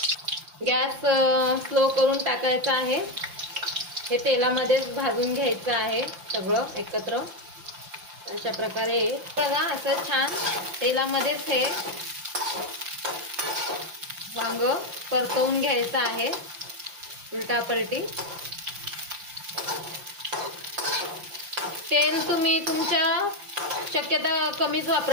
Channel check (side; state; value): left; late; 5.8 ms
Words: गॅस स्लो करून टाकायचा आहे. हे तेलामध्येच भाजून घ्यायचं आहे सगळं एकत्र. अशा प्रकारे बघा, असं छान तेलामध्येच हे वांग परतवून घ्यायचं आहे उलटापलटी. तेल तुम्ही तुमच्या शक्यता कमीच